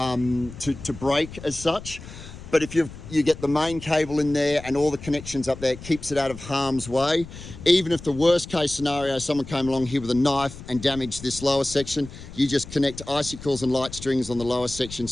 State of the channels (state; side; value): noise; left; rumble, 14 dB below the sound